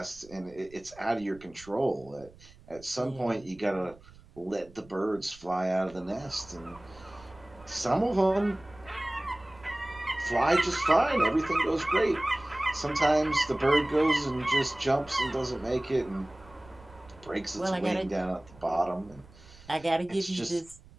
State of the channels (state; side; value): noise; right; rumble, 23 dB below the sound